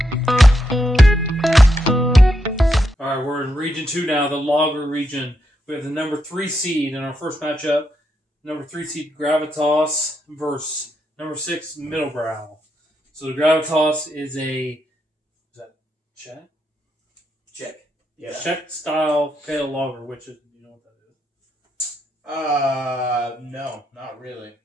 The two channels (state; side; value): normal; both; correlation 0.82